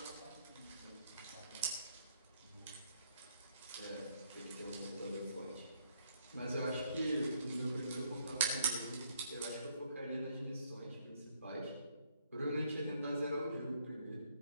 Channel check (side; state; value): both; inverted; correlation -0.69